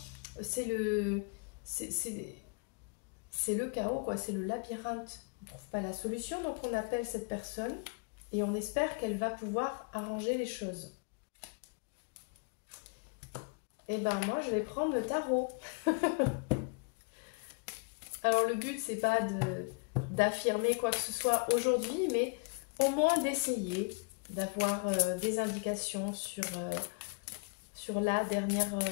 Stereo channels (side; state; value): right; quieter; 34.1 dB